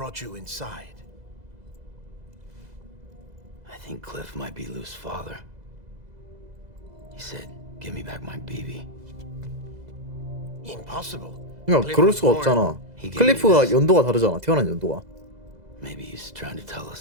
you inside. I think Cliff might be Lou's father. He said, give me back my BB. Impossible. 야, 그럴 수가 없잖아. 클리프가 연도가 다르잖아. 태어난 연도가. Maybe he's trying to tell us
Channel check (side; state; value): left; late; 2.0 ms